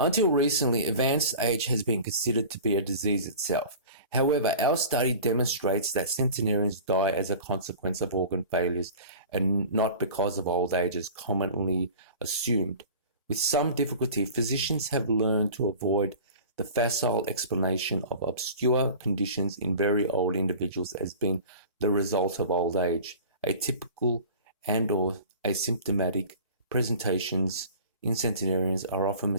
recently, advanced age has been considered to be a disease itself. However, our study demonstrates that centenarians die as a consequence of organ failures and not because of old age as commonly assumed. With some difficulty, physicians have learned to avoid the facile explanation of obscure conditions in very old individuals as being the result of old age. Atypical and/or asymptomatic presentations in centenarians are often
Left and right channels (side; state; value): both; inverted; correlation -0.40